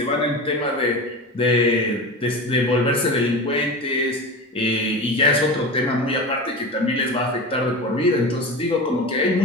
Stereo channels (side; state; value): both; normal; correlation 0.28